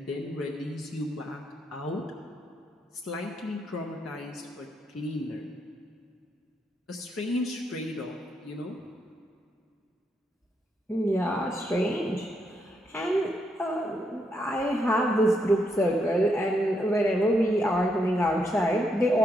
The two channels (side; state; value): both; normal; correlation 0.79